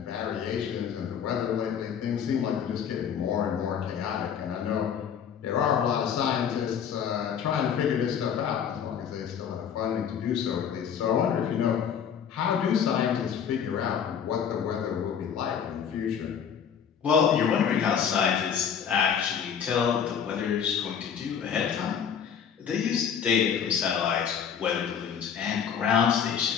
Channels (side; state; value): right; quieter; 7.8 dB